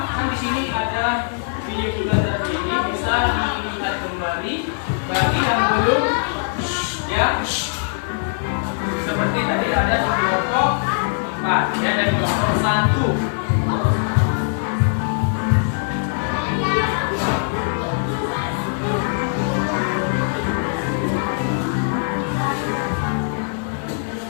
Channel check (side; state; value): right; silent; digital silence